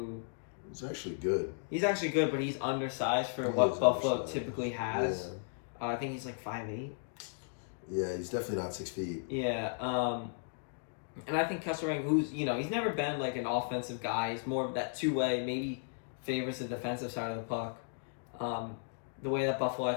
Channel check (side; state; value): right; silent; digital silence